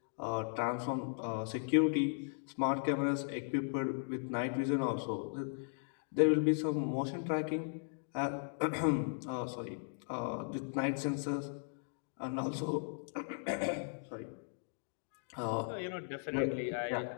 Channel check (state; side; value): silent; right; digital silence